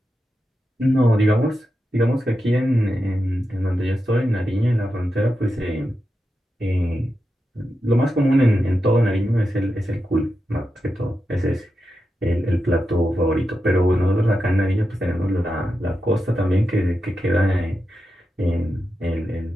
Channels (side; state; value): both; normal; correlation 0.89